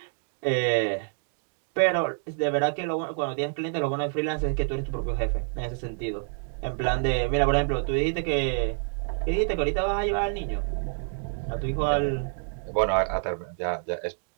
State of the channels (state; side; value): silent; left; 60 dB below the other